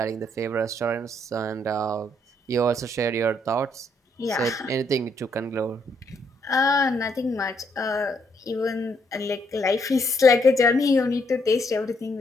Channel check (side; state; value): both; normal; correlation 0.73